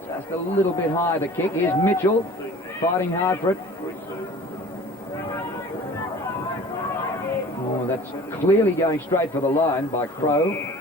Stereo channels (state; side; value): normal; both; correlation 0.45